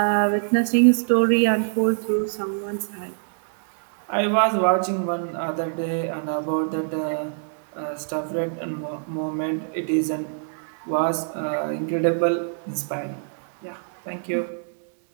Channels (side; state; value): left; silent; digital silence